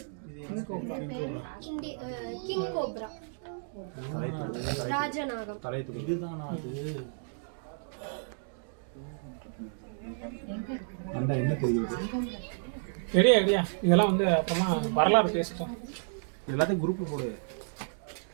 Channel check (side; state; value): left; silent; digital silence